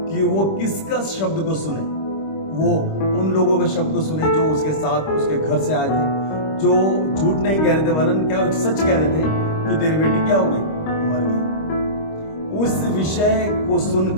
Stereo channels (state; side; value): late; right; 26 ms